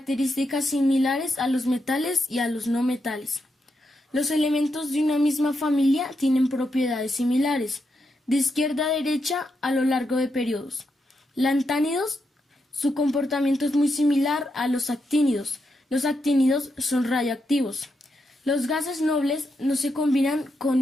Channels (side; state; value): both; normal; correlation 0.83